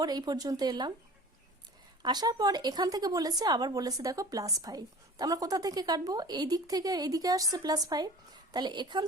এই পর্যন্ত এলাম, আসার পর এখান থেকে বলেছে, আবার বলেছে দেখো +5, তা আমরা কোথা থেকে কাটবো, এই দিক থেকে এই দিকে আসছে +5, তাহলে এখান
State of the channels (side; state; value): both; normal; correlation 0.42